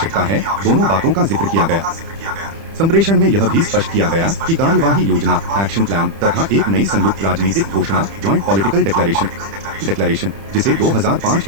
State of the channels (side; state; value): left; late; 30 ms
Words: है, दोनों बातों का जिक्र किया गया। संप्रेषण में यह भी स्पष्ट किया गया कि कार्यवाही योजना एक्शन प्लान तथा एक नई संयुक्त राजनीतिक घोषणा जॉइंट पॉलिटिकल डिक्लेरेशन जिसे 2005